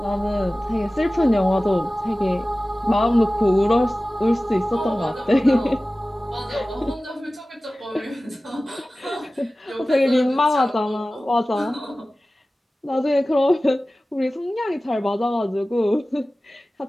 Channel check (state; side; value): normal; both; correlation 0.97